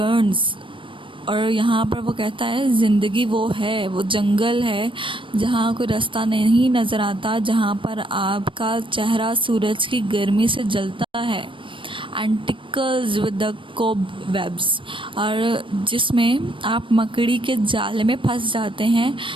और यहाँ पर वो कहता है ज़िंदगी वो है, वो जंगल है जहाँ कोई रास्ता नहीं नज़र आता, जहाँ पर आपका चेहरा सूरज की गर्मी से जलता है। And tickles with the cobwebs. और जिसमें आप मकड़ी के जाले में फंस जाते हैं,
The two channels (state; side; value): late; left; 0.25 ms